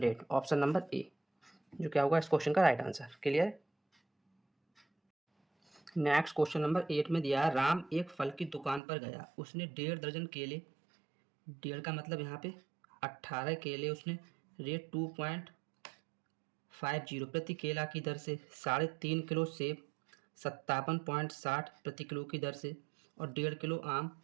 ऑप्शन नंबर ए जो क्या होगा इस क्वेश्चन का right answer. Clear. Next question number 8 में दिया है राम एक फल की दुकान पर गया, उसने 1.5 दर्जन केले, 1.5 का मतलब यहाँ पे 18 केले उसने रेट 2.50 प्रति केला की दर से, 3.5 किलो सेब 57.60 प्रति किलो की दर से और 1.5 किलो आम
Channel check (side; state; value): left; drops out; at 8.8 s